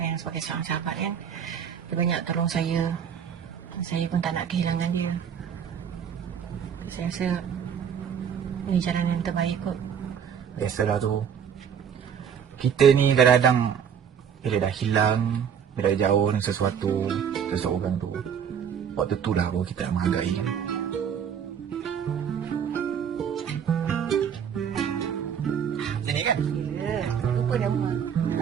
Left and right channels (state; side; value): quieter; left; 7.9 dB